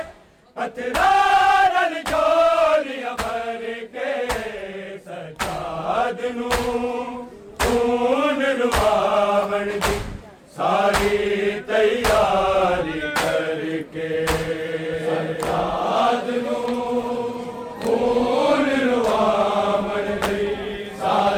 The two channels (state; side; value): identical; both; correlation 1.00